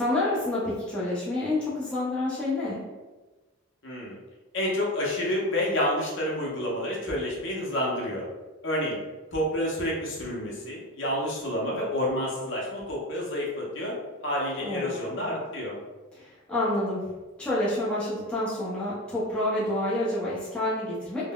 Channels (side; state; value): both; normal; correlation 0.25